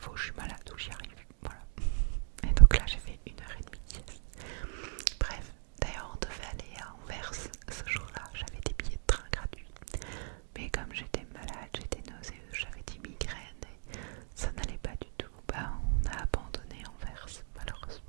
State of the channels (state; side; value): silent; left; 54 dB below the other